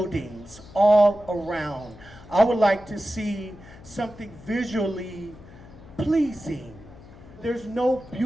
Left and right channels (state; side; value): noise; left; hum, 20 dB below the sound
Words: all around. I would like to see something visually pleasing. There's no